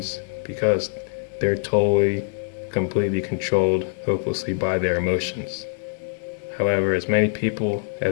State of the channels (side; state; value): right; silent; 63 dB below the other